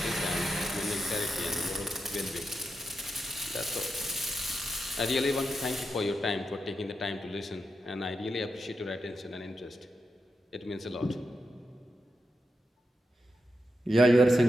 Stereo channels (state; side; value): normal; both; correlation 0.87